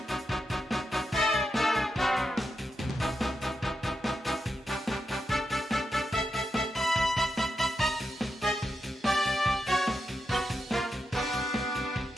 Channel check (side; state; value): both; normal; correlation 0.86